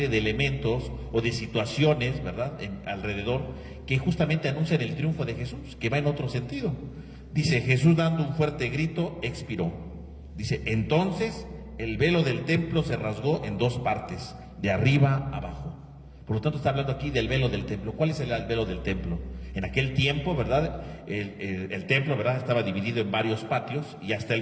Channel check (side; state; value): both; identical; correlation 1.00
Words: de elementos o de situaciones, ¿verdad?, alrededor, que justamente anuncian el triunfo de Jesús, que va en otro sentido. Dice, Jesús dando un fuerte grito, expiró. Dice, entonces el velo del templo se rasgó en dos partes, de arriba a abajo. Por lo tanto, está hablando aquí del velo del templo. ¿Cuál es el velo del templo? En aquel tiempo, ¿verdad?, el templo, ¿verdad?, estaba dividido en varios patios, y hasta